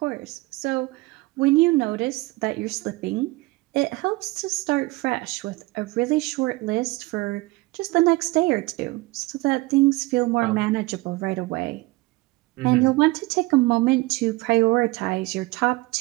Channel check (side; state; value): left; quieter; 21.9 dB